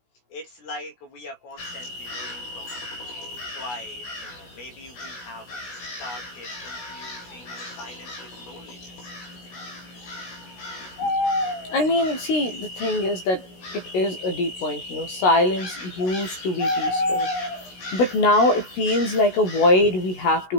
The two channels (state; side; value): late; right; 16 ms